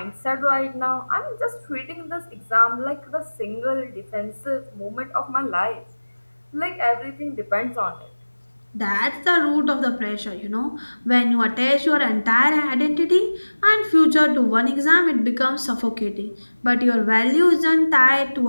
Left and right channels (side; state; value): both; inverted; correlation -1.00